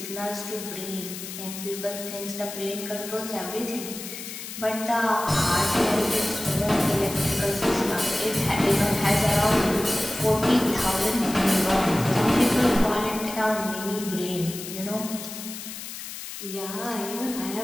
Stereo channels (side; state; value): left; noise; hiss, 10 dB below the sound